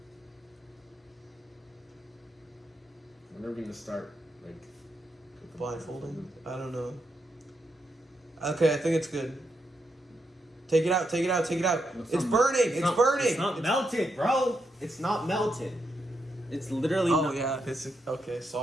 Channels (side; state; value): both; normal; correlation 0.82